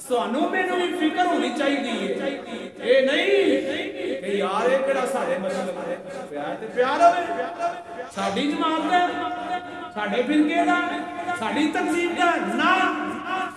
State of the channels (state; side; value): identical; both; correlation 1.00